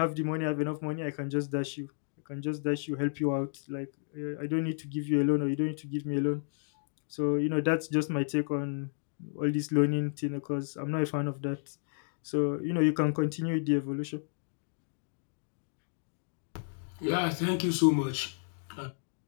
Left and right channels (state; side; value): silent; right; digital silence